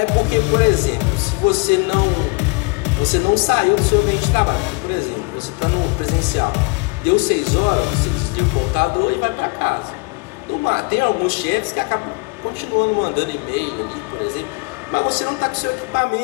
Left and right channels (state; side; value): quieter; right; 29.4 dB